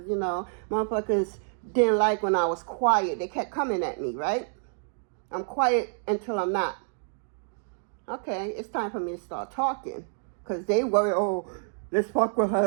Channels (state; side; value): silent; left; digital silence